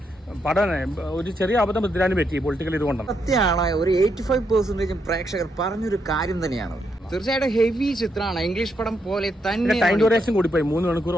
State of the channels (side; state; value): both; normal; correlation 0.79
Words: പടം ഒരു ചെറിയ അബദ്ധം പൃഥ്വിരാജിന് പറ്റി പൊളിറ്റിക്കൽ ഇതുകൊണ്ടാണ്. സത്യമാണ്, ഒരു 85% പ്രേക്ഷകർ പറഞ്ഞൊരു കാര്യം തന്നെയാണ്. തീർച്ചയായിട്ടും ഹെവി ചിത്രമാണ്, ഇംഗ്ലീഷ് പടം പോലെ തന്നെ. ടൈം ഡ്യൂറേഷൻ കൂടിപ്പോയി, 3 മണിക്കൂർ